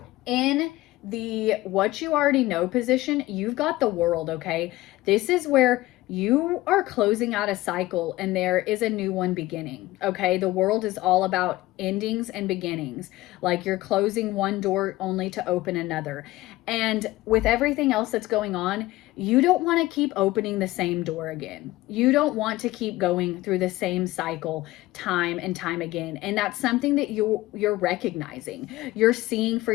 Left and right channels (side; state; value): right; quieter; 18.0 dB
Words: In the what you already know position, you've got the World, okay? This is where you are closing out a cycle and there is a new one beginning. Okay. The world is all about endings and beginnings. Like you're closing one door only to open another. And with everything else that's going on, you don't want to keep opening the same door again. You don't want to keep going through the same cycle time and time again. And that's something that you're recognizing. You're seeing for